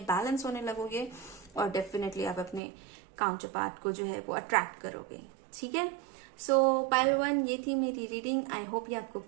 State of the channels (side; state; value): left; drops out; at 2.6 s